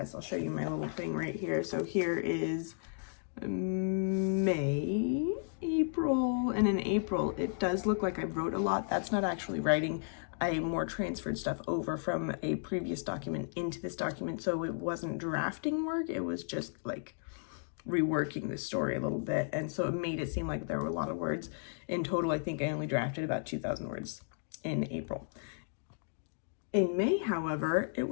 I'll show you my little thing right here. So here is May, April, and in April it does look like I wrote a lot. That's not actually writing. I more transferred stuff over from a previous document into this document, so it wasn't drafting work, it was just like reworking the story a little bit, and so it made it seem like there were a lot of words. In total, I think I only drafted about 2,000 words in April. In May, however, it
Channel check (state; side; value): silent; right; digital silence